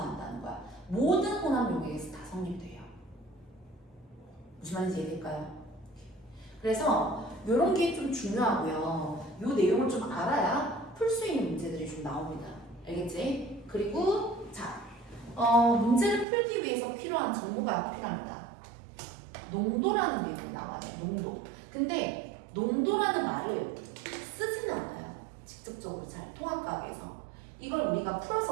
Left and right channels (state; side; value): drops out; left; at 16.2 s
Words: 거야. 모든 혼합 용액에서 다 성립돼요. 무슨 말인지 이해될까요? 그래서 이런 게 좀 중요하고요. 이 내용을 좀 알아야 풀 수 있는 문제들이 좀 나옵니다. 알겠지? 그리고 자, 문제를 풀기 위해서 필요한 정보가 필요합니다. 농도라는 게 나와요. 농도. 근데 농도라는 말을 쓰지는 않아요. 직접적으로 잘 통합과학에서. 이걸 우리가